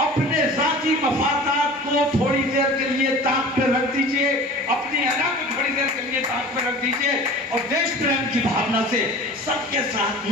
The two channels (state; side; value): normal; both; correlation 0.40